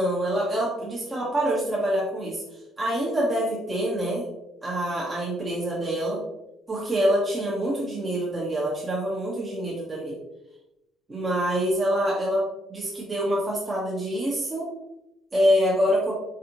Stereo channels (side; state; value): both; normal; correlation 0.74